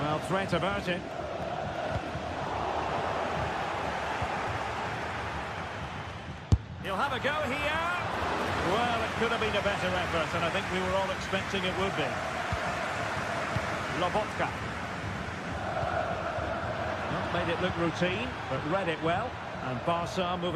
threat averted. He'll have a go here. Well, it could have been a better effort, and I think we were all expecting it would be. Lobotka. Not made it look routine, but read it well. And Barca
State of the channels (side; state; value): both; identical; correlation 1.00